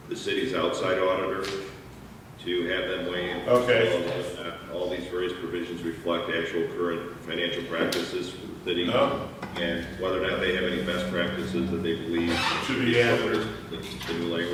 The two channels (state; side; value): identical; both; correlation 1.00